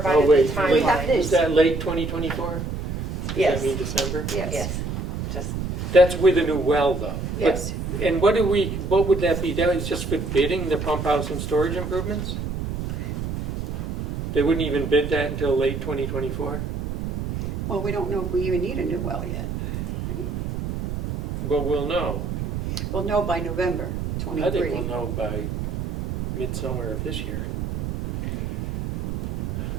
wait, the We have timeline. this. is that late 2024? Does Yes. that mean December? Yes, Yes, just, That's with a new well, though. But- yes. And what would that be? That was just for bidding the pump house and storage improvements? They wouldn't even bid that until late 2024? Well, we don't know if we even need a new well yet. But we'll know. We'll know by November I think 23. we'll know by midsummer of this year.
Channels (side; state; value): right; noise; rumble, 4 dB below the sound